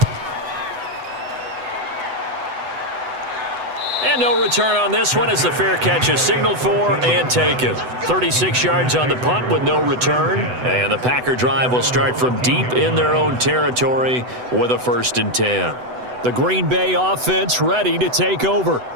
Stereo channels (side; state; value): left; late; 8.0 ms